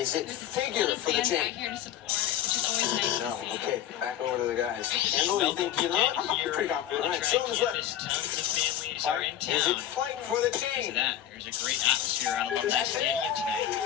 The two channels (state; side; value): quieter; right; 11.4 dB